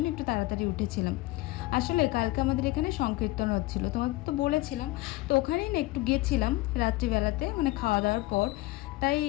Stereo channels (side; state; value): right; quieter; 19.6 dB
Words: একটু তাড়াতাড়ি উঠেছিলাম। আসলে কালকে আমাদের এখানে সংকীর্তন হচ্ছিলো, তোমাদের তো বলেছিলাম। তো ওখানেই না একটু গেছিলাম রাত্রিবেলাতে, মানে খাওয়া দাওয়ার পর। তাই